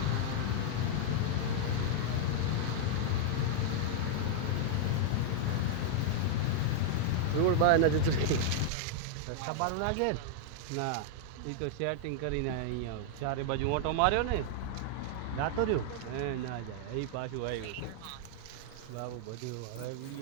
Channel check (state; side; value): different; both; correlation -0.01